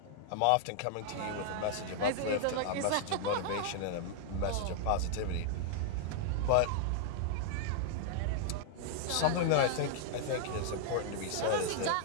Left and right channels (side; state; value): both; different; correlation -0.01